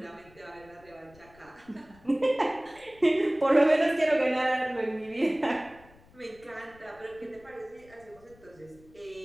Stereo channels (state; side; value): noise; left; rumble, 26 dB below the sound